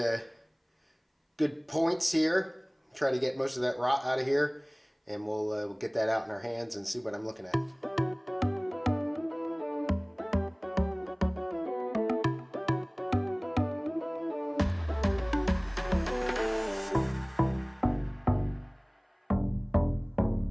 good points here. Try to get most of that rot out of here, and we'll get that out in our hands and see what I'm looking at.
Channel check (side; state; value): both; identical; correlation 1.00